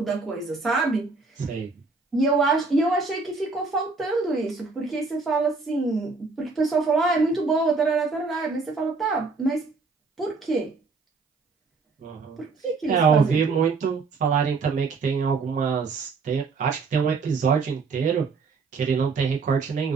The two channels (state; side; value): quieter; left; 4.3 dB